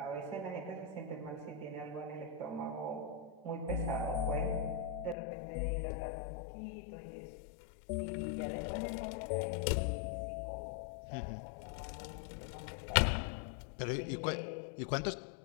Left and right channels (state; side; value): drops out; right; at 5.2 s